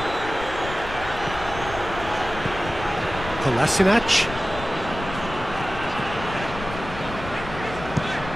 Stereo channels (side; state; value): left; noise; rumble, 11 dB below the sound